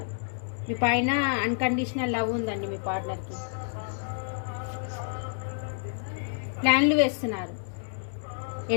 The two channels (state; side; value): silent; right; digital silence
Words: మీ పైన అన్కండిషనల్ లవ్ ఉందండి మీ పార్ట్నర్కి. ప్లాన్లు వేస్తున్నారు.